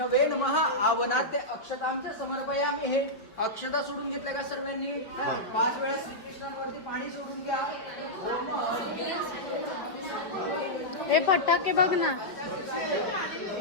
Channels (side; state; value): right; late; 5.1 ms